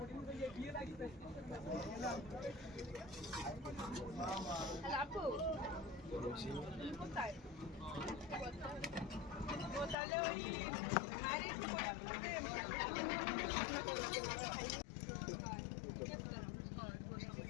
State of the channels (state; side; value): drops out; right; at 10.0 s